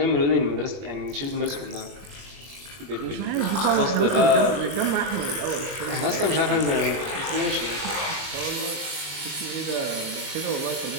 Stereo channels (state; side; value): late; left; 21 ms